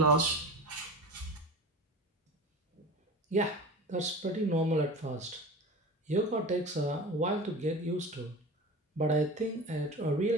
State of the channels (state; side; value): normal; both; correlation 0.33